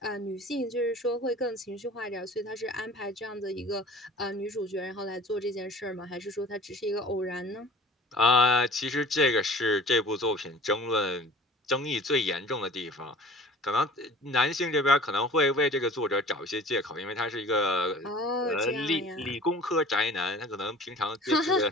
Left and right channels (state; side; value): normal; both; correlation 0.45